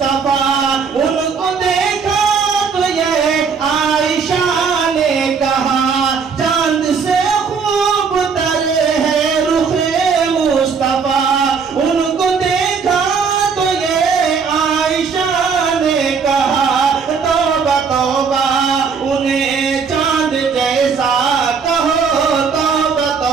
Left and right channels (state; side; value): quieter; left; 5.7 dB